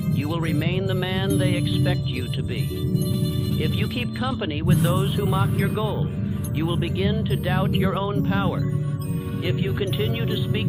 you will remain the man they expect you to be. If you keep company with those who mock your goal, you will begin to doubt your own power. If you continue to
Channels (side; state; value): both; identical; correlation 1.00